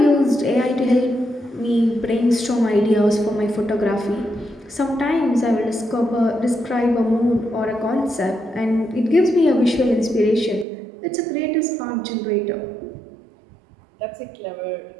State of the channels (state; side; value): drops out; left; at 10.7 s